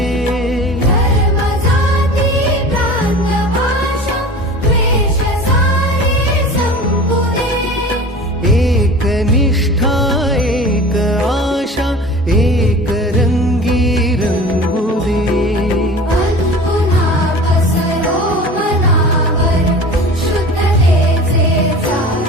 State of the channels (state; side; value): normal; both; correlation 0.38